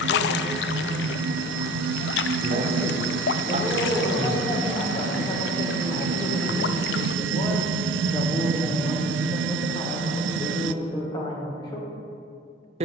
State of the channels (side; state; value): both; normal; correlation 0.42